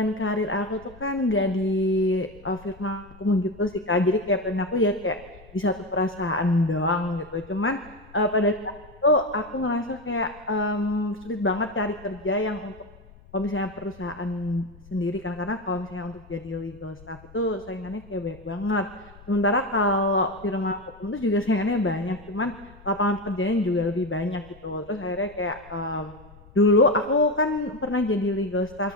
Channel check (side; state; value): left; noise; rumble, 22 dB below the sound